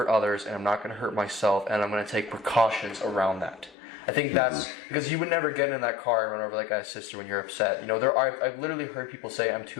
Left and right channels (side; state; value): right; drops out; at 3.8 s